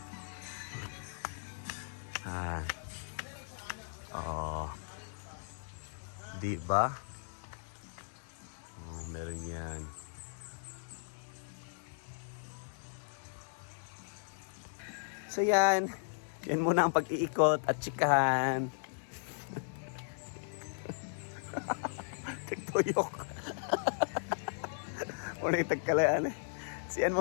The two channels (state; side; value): silent; right; 53 dB below the other